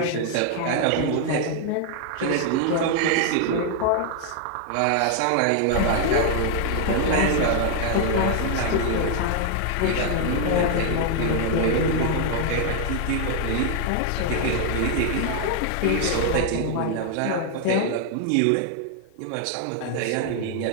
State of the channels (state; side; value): different; both; correlation 0.00